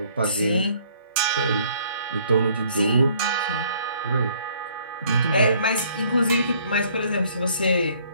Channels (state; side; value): inverted; both; correlation -0.61